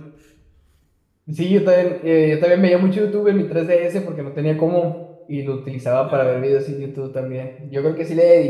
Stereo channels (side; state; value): both; identical; correlation 1.00